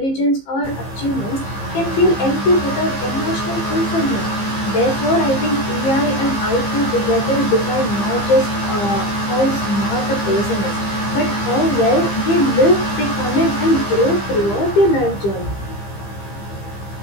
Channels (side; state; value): right; late; 15 ms